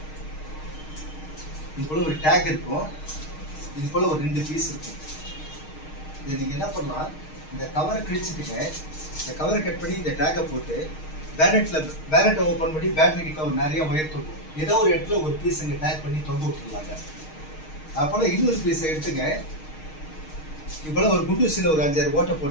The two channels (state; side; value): late; right; 6.4 ms